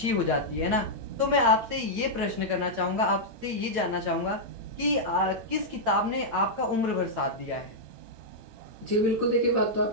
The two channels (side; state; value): left; late; 8.9 ms